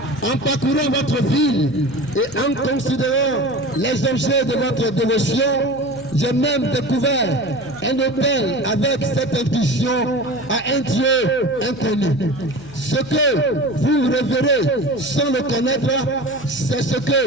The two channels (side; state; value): left; noise; hum, 21 dB below the sound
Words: en parcourant votre ville et en considérant les objets de votre dévotion, j'ai même découvert un hôtel avec cette intuition à un Dieu inconnu. Ce que vous révérez sans le connaître, c'est ce